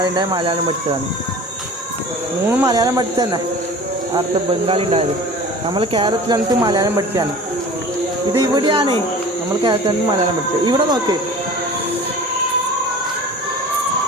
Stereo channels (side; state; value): both; normal; correlation 0.40